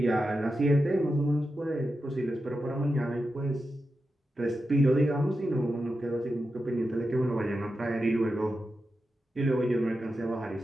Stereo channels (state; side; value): normal; both; correlation 0.89